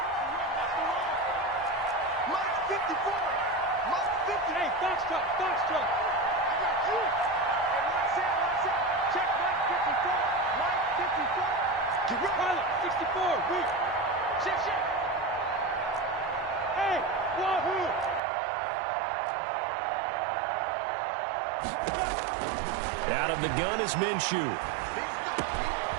Out of the gun is Minshew.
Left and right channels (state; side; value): drops out; left; at 18.2 s